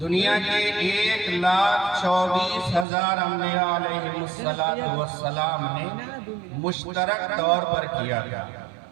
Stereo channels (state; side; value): drops out; left; at 2.9 s